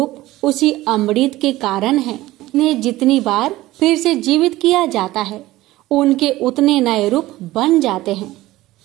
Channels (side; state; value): left; quieter; 17.2 dB